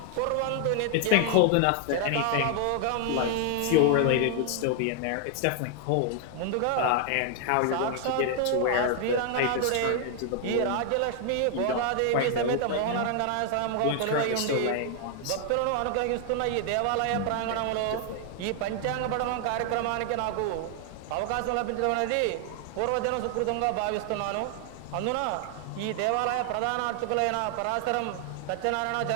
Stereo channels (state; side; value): different; both; correlation 0.00